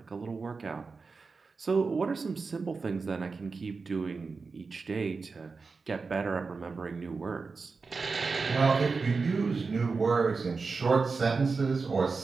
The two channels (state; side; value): quieter; left; 4.5 dB